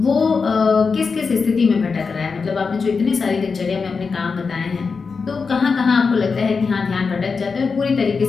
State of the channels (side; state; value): right; quieter; 5.0 dB